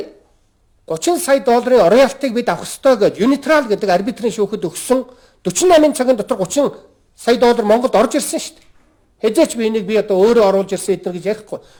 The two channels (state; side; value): identical; both; correlation 1.00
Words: 30 сая долларын роялтыг бид авах ёстой гэж Unitrал гэдэг арбитрийн шүүхэд өгсөн 48 цагийн дотор 30 сая доллар Монголд орж ирсэн шүү дээ. Хэзээч би энийг би одоо өөрөө оруулж ирсэн эдгээр гэж ярихгүй.